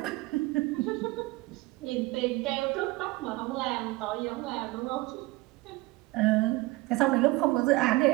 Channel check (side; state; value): left; quieter; 21.0 dB